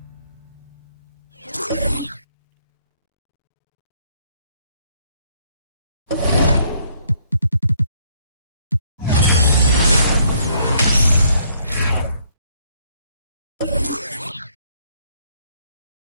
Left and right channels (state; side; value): inverted; both; correlation -0.67